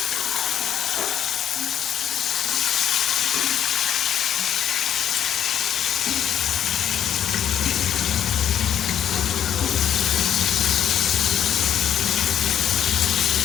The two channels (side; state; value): right; quieter; 9.9 dB